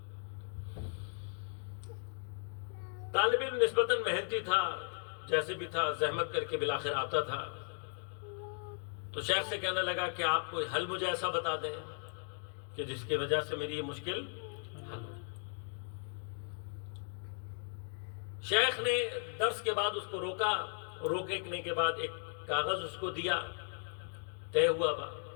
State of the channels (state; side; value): silent; right; 53 dB below the other